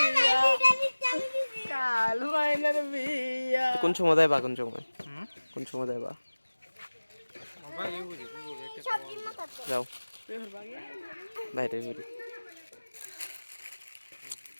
কাল মাইনার বিয়া কোন সময় দেবা কোন সময় দেবা যাও বাইরে বেরি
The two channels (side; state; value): both; inverted; correlation -1.00